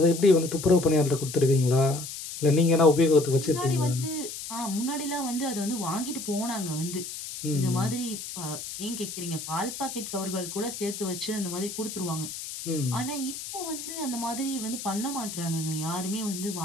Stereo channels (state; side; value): noise; left; hiss, 9 dB below the sound